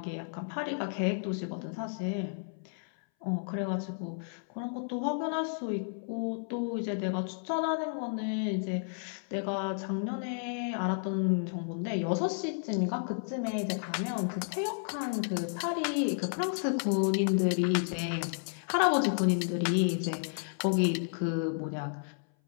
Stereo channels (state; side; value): silent; right; 56 dB below the other